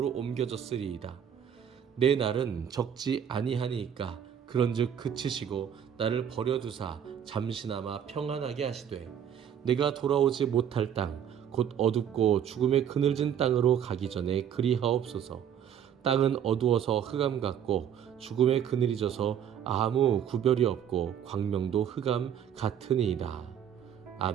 옮겨졌으리이다. 내 날은 적지 아니하니이까. 그런즉 그치시고 나를 버려두사 잠시나마 평안하게 하시되 내가 돌아오지 못할 땅 곧 어둡고 죽음의 그늘진 땅으로 가기 전에 그리하옵소서. 땅은 어두워서 흑암 같고 죽음의 그늘이 져서 아무 구별이 없고 광명도 흑암 같으니이다.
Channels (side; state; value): left; quieter; 9.0 dB